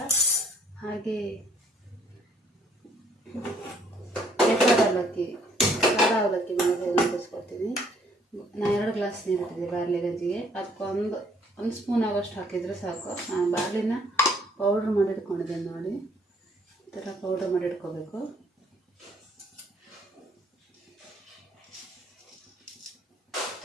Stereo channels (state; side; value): normal; both; correlation 0.63